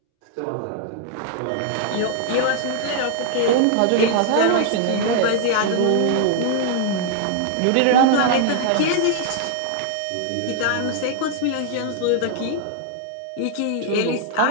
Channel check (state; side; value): different; both; correlation -0.01